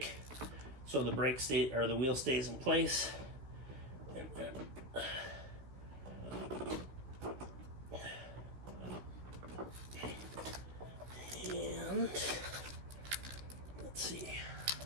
so the brake the wheel stays in place. And let's see,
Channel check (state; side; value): late; left; 15 ms